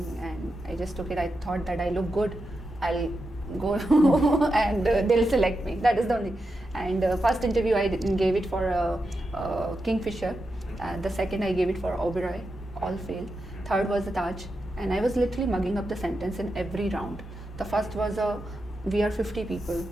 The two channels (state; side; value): normal; both; correlation 0.88